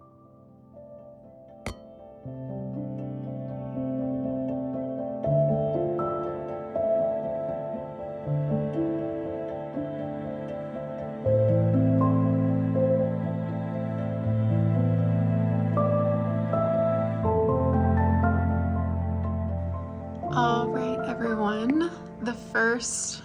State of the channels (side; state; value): both; identical; correlation 1.00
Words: All right, everyone. The